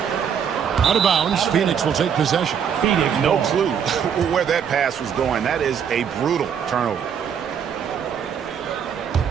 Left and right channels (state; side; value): quieter; left; 7.8 dB